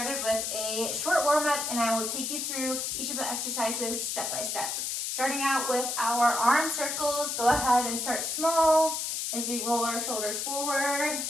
with a short warm-up, and I will take you through each of the exercises step by step. Starting out with our arm circles, go ahead and start small as we roll our shoulders forward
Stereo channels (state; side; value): noise; left; hiss, 2 dB below the sound